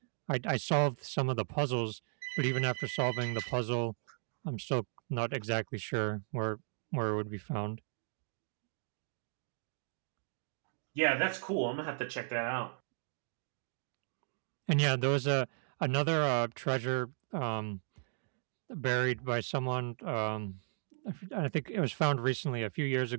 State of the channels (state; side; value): silent; left; digital silence